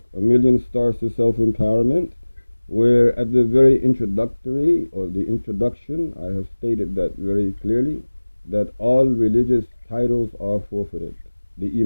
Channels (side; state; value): both; inverted; correlation -1.00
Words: A Million Stars to Self Empowerment, where at the very introductory or the introduction, I have stated that very clearly that all religious titles are forfeited. The